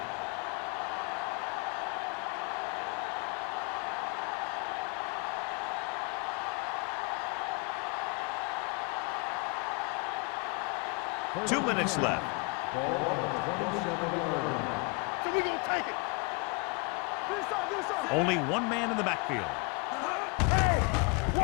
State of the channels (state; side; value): quieter; right; 31.5 dB